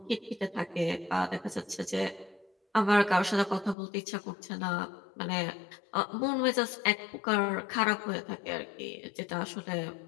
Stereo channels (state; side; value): drops out; right; at 3.8 s